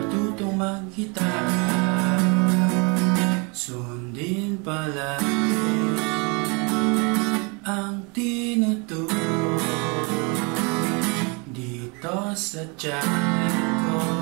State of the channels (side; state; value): left; quieter; 31.4 dB